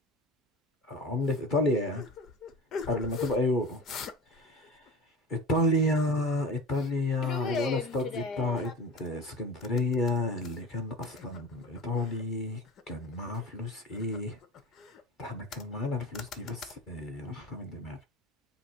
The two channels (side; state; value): both; normal; correlation 0.34